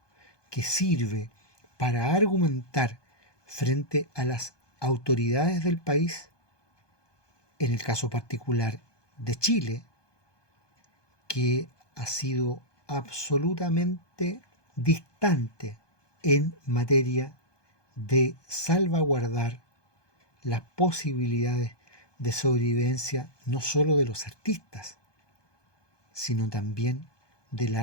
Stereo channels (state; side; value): late; right; 1.2 ms